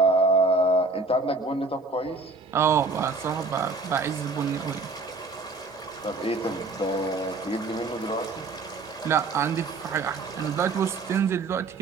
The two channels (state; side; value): quieter; left; 3.7 dB